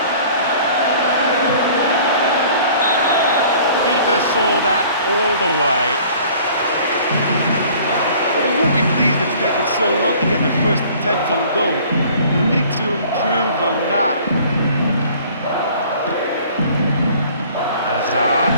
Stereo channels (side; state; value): both; inverted; correlation -0.51